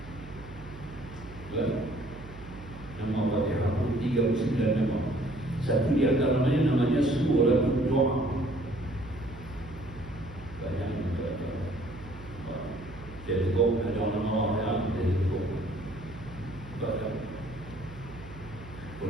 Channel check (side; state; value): right; noise; hum, 16 dB below the sound